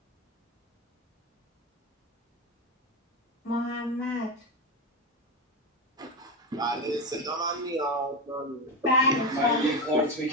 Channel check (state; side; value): normal; both; correlation 0.16